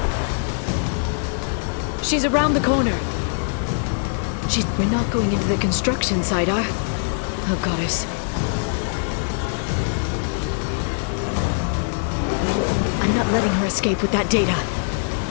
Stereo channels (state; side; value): silent; right; digital silence